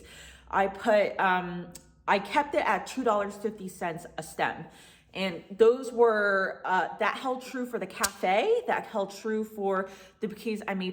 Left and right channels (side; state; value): both; identical; correlation 1.00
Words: I kept it at $2.50 a stem. And those were, that held true for the cafe, that held true for the bouquets I